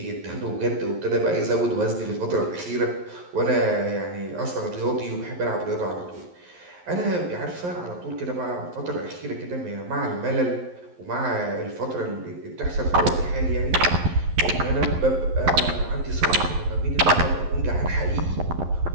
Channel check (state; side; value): late; left; 11 ms